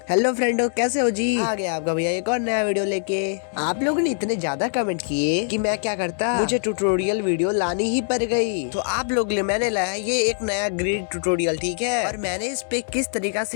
Hello friendo, कैसे हो जी? आ गया आपका भैया एक और नया वीडियो लेके। आप लोगों ने इतने ज्यादा कमेंट किए कि मैं क्या करता, मुझे ट्यूटोरियल वीडियो लानी ही पड़ गई। तो आप लोग लिए मैंने लाया ये एक नया ग्रिड ट्यूटोरियल, ठीक है। और मैंने इस पे किस तरीका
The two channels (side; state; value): right; silent; digital silence